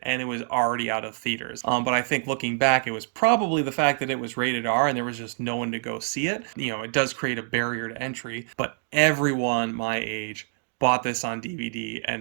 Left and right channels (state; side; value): silent; left; digital silence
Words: and it was already out of theaters. But I think looking back, it was probably the fact that it was rated R and there was just no one to go see it. It does create a barrier to entry, but everyone my age bought this on DVD